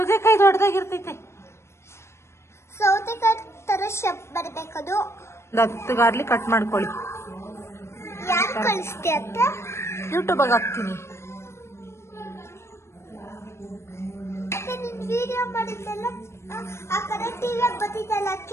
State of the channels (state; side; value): late; right; 0.13 ms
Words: ದೊಡ್ಡದಾಗಿರ್ತೈತೆ. ಸೌತೆಕಾಯಿ ತರ ಶೇಪ್ ಬರ್ಬೇಕದು. 10 ಗಾರ್ಲಿಕ್ ಕಟ್ ಮಾಡ್ಕೊಳ್ಳಿ. ಯಾರು ಕಳಿಸ್ತಿ ಅಂತ? ಯೂಟ್ಯೂಬ್ ಹಾಕ್ತೀನಿ. ಮತ್ತೆ ನಿನ್ ವಿಡಿಯೋ ಮಾಡಿದ್ದೆಲ್ಲ ಆ ಕಡೆ ಟಿವಿ ಬರ್ತಿದ್ದಲ್ಲ,